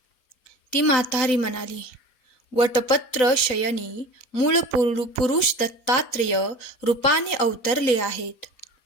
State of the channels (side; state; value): right; late; 4.0 ms